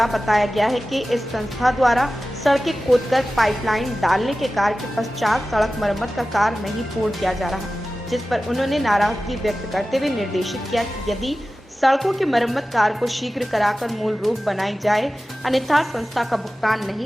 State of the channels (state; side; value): normal; both; correlation 0.95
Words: बताया गया है कि इस संस्था द्वारा सड़कें खोदकर पाइपलाइन डालने के कार्य के पश्चात सड़क मरम्मत का कार्य नहीं पूर्ण किया जा रहा, जिस पर उन्होंने नाराजगी व्यक्त करते हुए निर्देशित किया कि यदि सड़कों के मरम्मत कार्य को शीघ्र कराकर मूल रूप बनाई जाए, अन्यथा संस्था का भुगतान